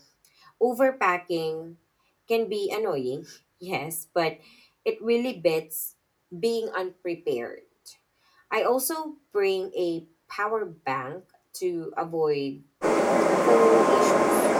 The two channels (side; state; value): both; identical; correlation 1.00